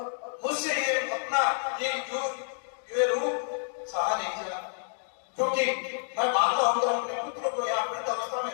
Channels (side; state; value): right; silent; digital silence